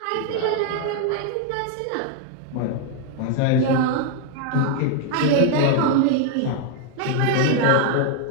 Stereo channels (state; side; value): different; both; correlation 0.01